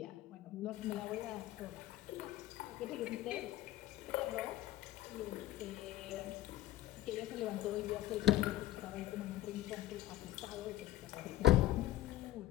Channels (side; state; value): right; quieter; 14.7 dB